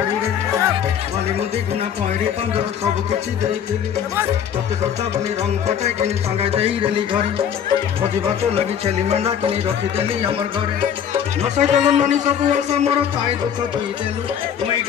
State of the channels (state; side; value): quieter; right; 8.7 dB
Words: रे माली मोदी खाना पहरी चांदर सब किछि देई थिली तते सजा बनी रंग फटाई किनी संगा देई रेली घरे भोजी भात लगी छेली मेंढा किनी रखी देली हमर घरे नसाई देलु ननी सब आशा मोर पाई दुख दी देलु मुई